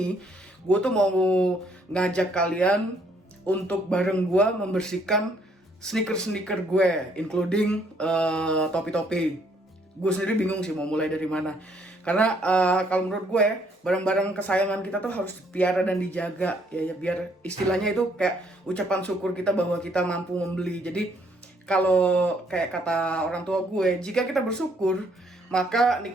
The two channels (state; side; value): normal; both; correlation 0.67